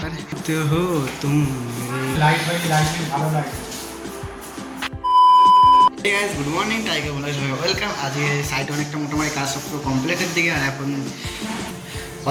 তো হো তুমি লাইট ভালো লাগে। গুড মর্নিং টাইগার বলে সবাই ওয়েলকাম। আজকে সাইট অনেকটা মোটামুটি কাজ সব পুরো কমপ্লিটের দিকে, আর এখন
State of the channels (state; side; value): identical; both; correlation 1.00